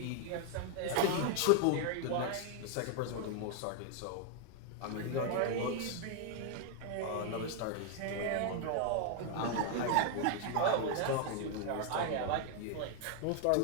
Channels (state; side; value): different; both; correlation 0.00